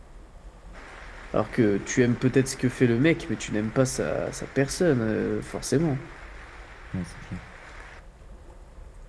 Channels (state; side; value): identical; both; correlation 1.00